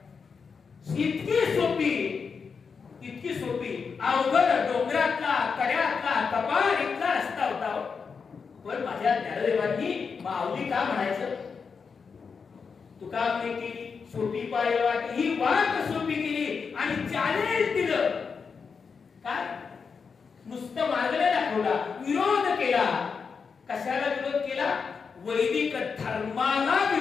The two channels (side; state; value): right; quieter; 5.6 dB